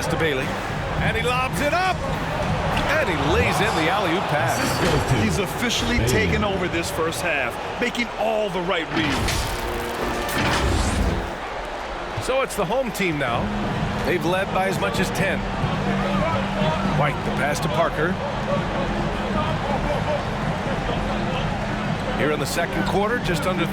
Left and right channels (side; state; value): both; identical; correlation 1.00